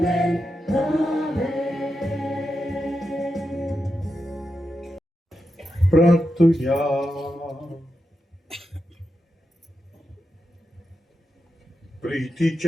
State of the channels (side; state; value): both; normal; correlation 0.87